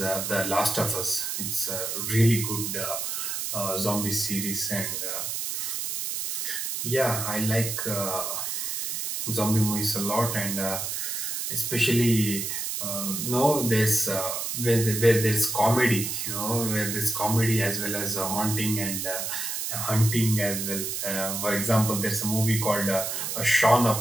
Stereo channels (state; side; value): noise; right; hiss, 3 dB below the sound